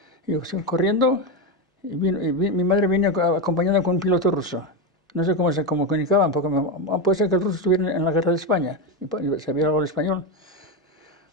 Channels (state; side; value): normal; both; correlation 0.12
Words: Y yo corriendo, mi madre vino acompañada con un piloto ruso. No sé cómo se comunicaban, porque puede ser que el ruso estuviera en la guerra de España y sabía algo de español.